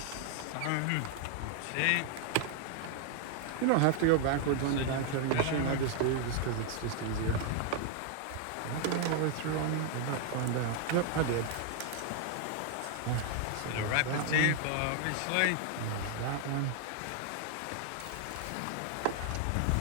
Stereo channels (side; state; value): both; different; correlation 0.00